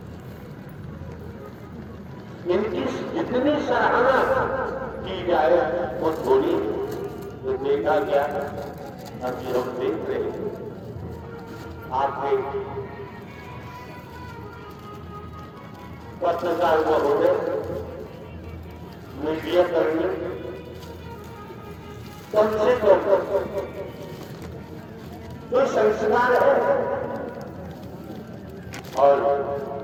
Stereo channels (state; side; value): identical; both; correlation 1.00